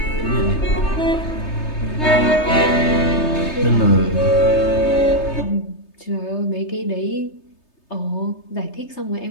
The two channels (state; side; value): late; right; 3.3 ms